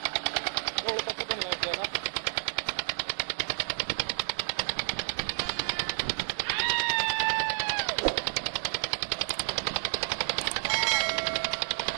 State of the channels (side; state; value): left; silent; digital silence